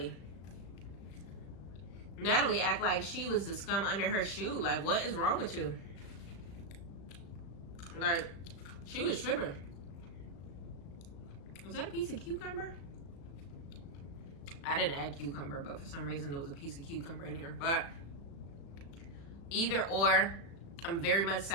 Natalie act like she was the scum under her shoe. Like, what is wrong with you? Like, she was tripping. Was that a piece of cucumber? I didn't add cucumber, but for some reason there was a piece of cucumber in here. But either or, I'm very much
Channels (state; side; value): late; right; 36 ms